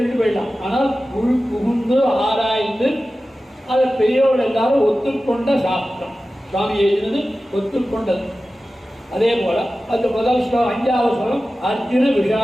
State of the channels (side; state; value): both; normal; correlation 0.95